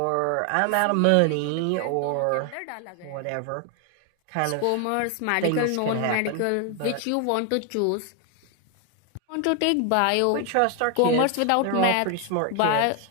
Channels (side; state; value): both; different; correlation 0.00